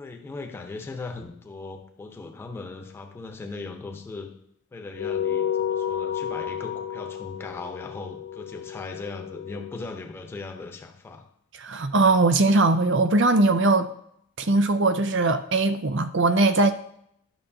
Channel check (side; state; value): both; normal; correlation 0.20